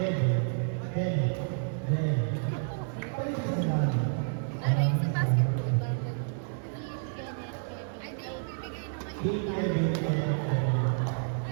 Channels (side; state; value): left; silent; digital silence